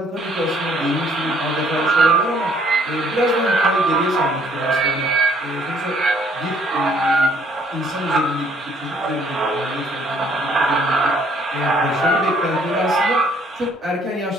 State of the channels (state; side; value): normal; both; correlation 0.63